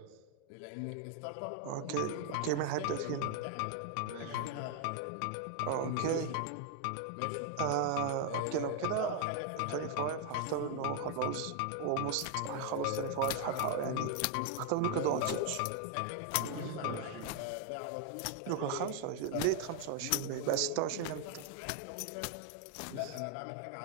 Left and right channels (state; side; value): different; both; correlation 0.00